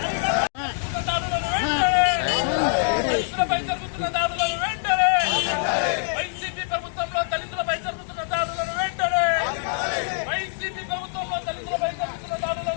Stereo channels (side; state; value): right; silent; digital silence